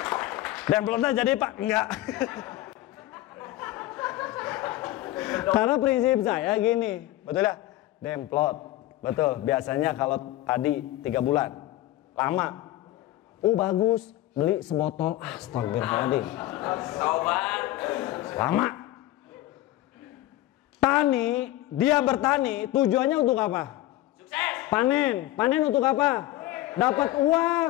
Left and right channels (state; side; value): quieter; right; 15.7 dB